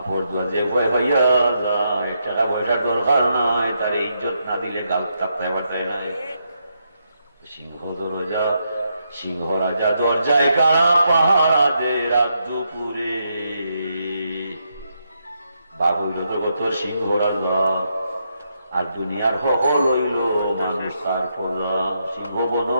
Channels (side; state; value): both; inverted; correlation -0.80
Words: দোয়া যে ভয় হইয়া যায়, টাকা পয়সার দরকার নাই, তার ইজ্জত না দিলে গাল চাপতায় বার্তায় নাই। সিংহ রাজা দরজায় কারা পাহারা দে রাত দুপুরে। বাবু জগতর সিংহ রাজা, আর দুনিয়ার সকল হইল মানুষ তার পদা। সিংহ বন